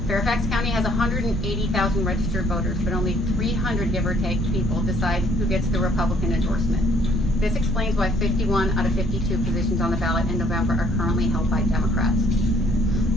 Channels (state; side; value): normal; both; correlation 0.63